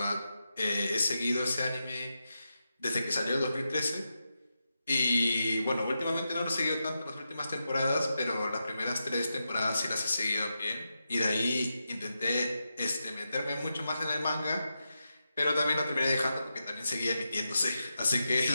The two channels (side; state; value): both; inverted; correlation -0.88